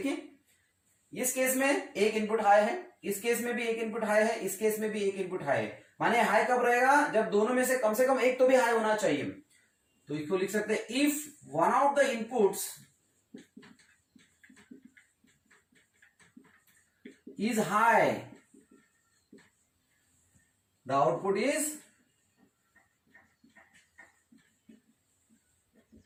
इस केस में एक इनपुट हाई है, इस केस में भी एक इनपुट हाई है, इस केस में भी एक इनपुट हाई है. माने हाई कब रहेगा? जब दोनों में से कम एक तो भी हाई होना चाहिए. तो इसको लिख सकते हैं if one of the inputs is high, the output is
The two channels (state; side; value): identical; both; correlation 1.00